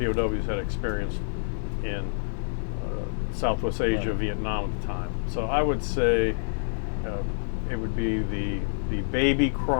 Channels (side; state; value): right; silent; digital silence